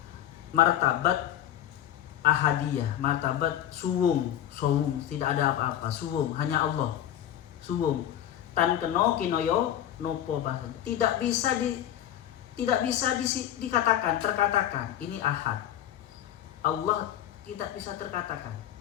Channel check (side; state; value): right; quieter; 11.4 dB